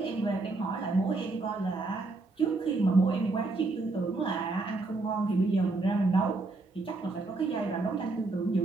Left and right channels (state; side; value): quieter; left; 3.4 dB